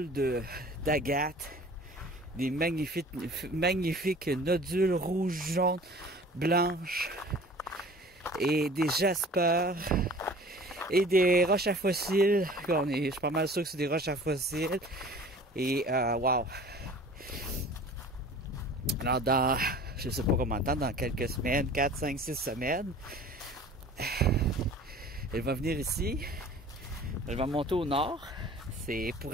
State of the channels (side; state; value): both; normal; correlation 0.45